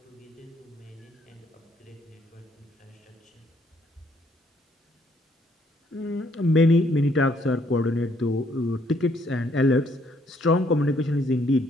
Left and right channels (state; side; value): normal; both; correlation 0.68